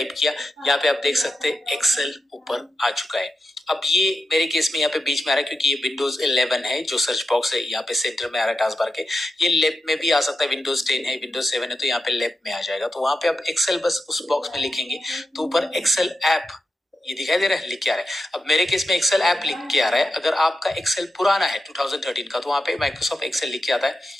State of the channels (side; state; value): both; normal; correlation 0.89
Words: किया, यहाँ पे आप देख सकते हैं एक्सेल ऊपर आ चुका है। अब ये मेरे केस में यहाँ पे बीच में आ रहा है क्योंकि ये विंडोज 11 है, जो सर्च बॉक्स है यहाँ पे सेंटर में आ रहा है टास्क बार के। ये लेफ्ट में भी आ सकता है, विंडोज 10 है, विंडोज 7 है, तो यहाँ पे लेफ्ट में आ जाएगा। तो वहां पे आप एक्सेल बस उस बॉक्स में लिखेंगे तो ऊपर एक्सेल ऐप ये दिखाई दे रहा है, लिख के आ रहा है। अब मेरे केस में एक्सेल ऐप लिख के आ रहा है। अगर आपका एक्सेल पुराना है 2013 का तो वहां पे माइक्रोसॉफ्ट एक्सेल लिख के आता है